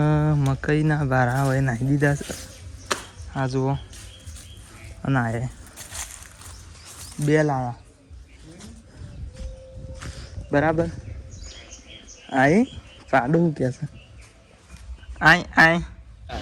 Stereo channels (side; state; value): both; identical; correlation 1.00